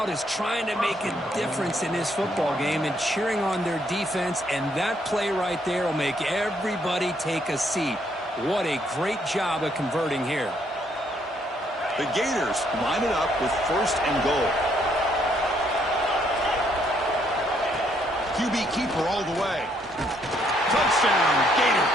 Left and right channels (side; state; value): both; normal; correlation 0.70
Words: is trying to make a difference in this football game and cheering on their defense, and that play right there will make everybody take a seat. What a great job of converting here. The Gators line it up with 1st and goal. QB keeper all the way. Touchdown,